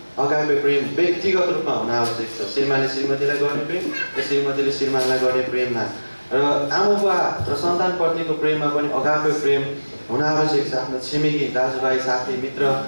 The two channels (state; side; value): inverted; both; correlation -1.00